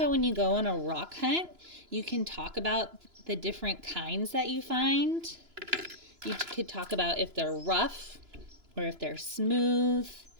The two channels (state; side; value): late; left; 2.9 ms